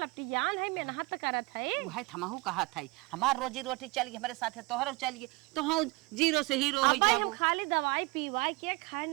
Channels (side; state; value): left; quieter; 24.3 dB